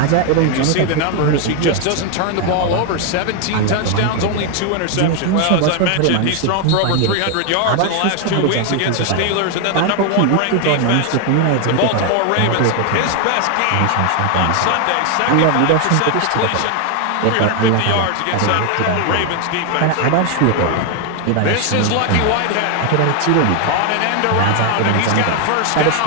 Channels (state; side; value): different; both; correlation 0.01